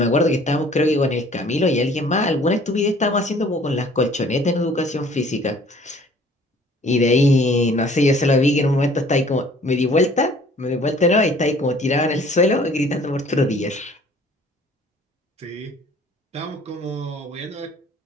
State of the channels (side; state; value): both; normal; correlation 0.54